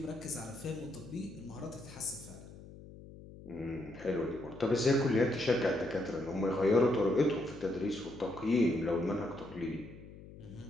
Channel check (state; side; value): noise; left; hum, 17 dB below the sound